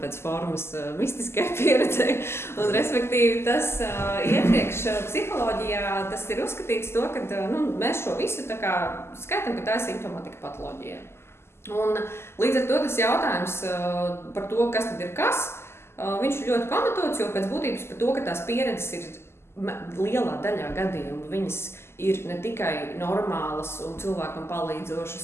formas mistiskai pieredzei. Un, respektīvi, tas iepriekš psiholoģijā tas ir uzskatīts to, ka mēs šo visu tā kā skaitam, ka tā ir simptomātika patoloģija. Un līdz ar to tas jautājums par to, kas tad ir kas, viņš ir ļoti pamatots, jo pēc būtības par to, ka tās pieredzes ir lielā daļā gadījumu, viņas ir ne tikai normālas un cilvēkam palīdzošas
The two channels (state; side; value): late; right; 0.12 ms